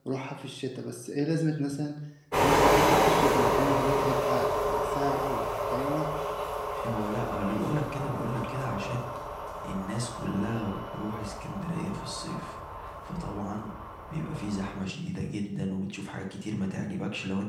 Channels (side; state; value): both; identical; correlation 1.00